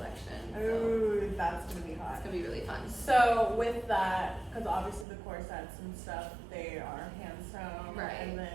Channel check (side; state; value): left; drops out; at 5.1 s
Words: So Ooh, that's gonna be hot. it's gonna be really fun. So with that, because obviously the corsets and stuff, they are hand sewn, Right. and